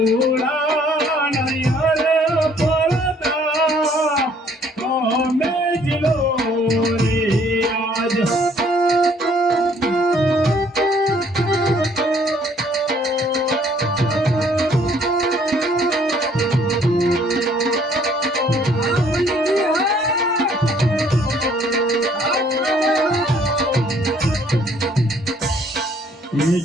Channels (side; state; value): both; normal; correlation 0.61